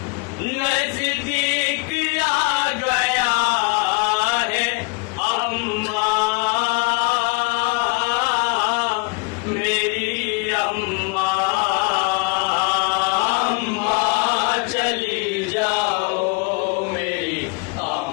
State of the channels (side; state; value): right; quieter; 29.2 dB